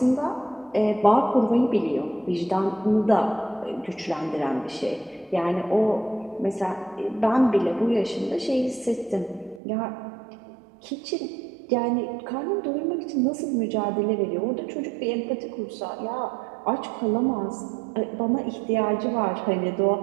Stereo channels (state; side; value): drops out; left; at 9.6 s